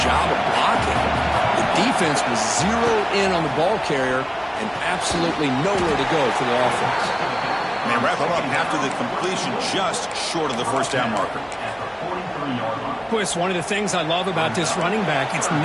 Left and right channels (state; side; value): identical; both; correlation 1.00